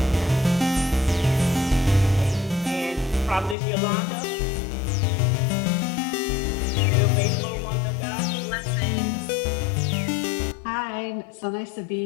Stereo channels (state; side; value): drops out; right; at 3.6 s